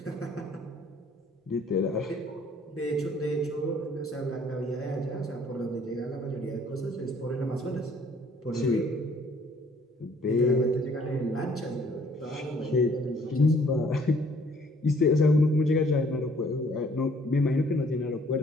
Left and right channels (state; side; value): normal; both; correlation 0.60